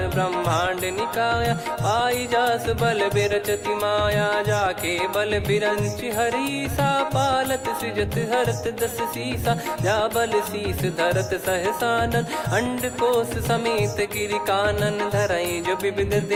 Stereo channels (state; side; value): identical; both; correlation 1.00